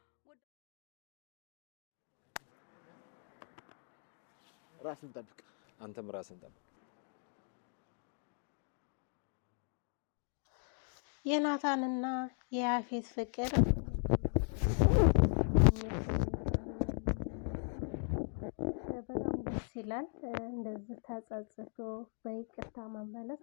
ራስን ጠብቅ። አንተም ራስን ጠብቅ። የናታንና የያፌት ፍቅር ስለተመለሰ በጣም ደስ የሚል ስሜት አለው ማለት ነው። በጣም ደስ ይላል። እንደዚህ ተጸጽቶ በይቅርታ መመለስ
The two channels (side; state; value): right; silent; 52 dB below the other